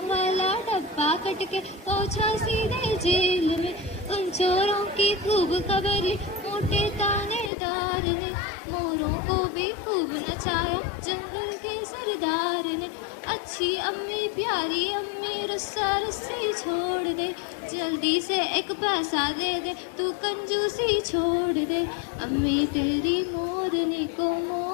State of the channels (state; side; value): drops out; right; at 7.5 s